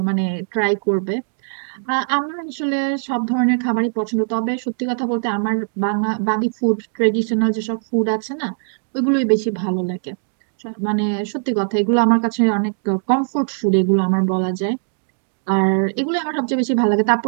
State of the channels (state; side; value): silent; left; digital silence